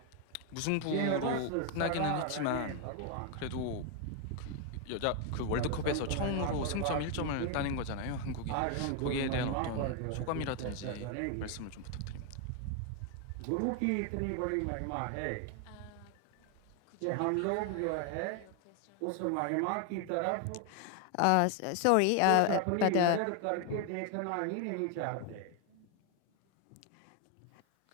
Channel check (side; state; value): both; different; correlation 0.01